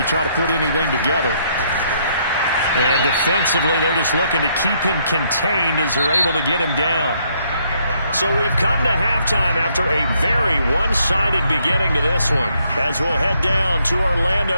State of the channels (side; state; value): both; inverted; correlation -0.71